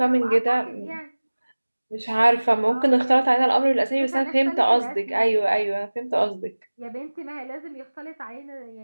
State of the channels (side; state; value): both; inverted; correlation -1.00